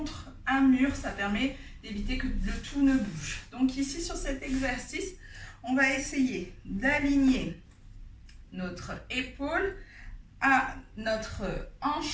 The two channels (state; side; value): identical; both; correlation 1.00